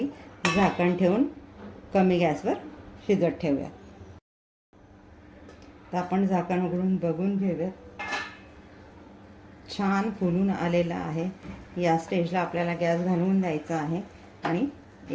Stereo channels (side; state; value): both; identical; correlation 1.00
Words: झाकण ठेवून कमी गॅसवर शिजत ठेवूयात. तर आपण झाकण उघडून बघून घेऊयात. छान फुलून आलेला आहे. या स्टेजला आपल्याला गॅस घालवून द्यायचा आहे आणि